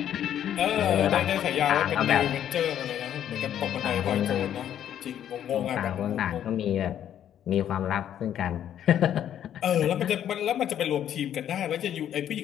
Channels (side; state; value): right; quieter; 10.4 dB